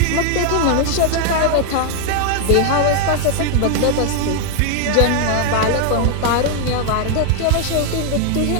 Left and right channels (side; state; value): both; different; correlation 0.00